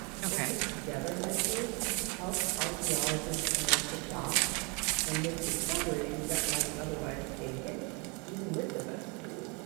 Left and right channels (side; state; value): left; quieter; 31.3 dB